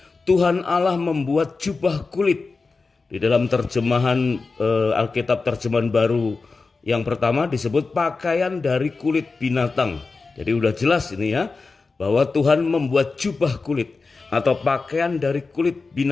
Tuhan Allah membuat jubah kulit. Di dalam terjemahan Alkitab terjemahan baru yang pertama disebut pakaian dari kulit binatang. Jadi udah jelas ini ya, bahwa Tuhan membuat jubah kulit atau pakaian dari kulit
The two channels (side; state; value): right; quieter; 4.1 dB